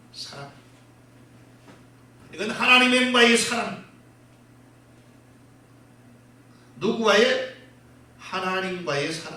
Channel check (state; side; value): identical; both; correlation 1.00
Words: 사랑. 이건 하나님과의 사랑. 누구와의? 하나님과의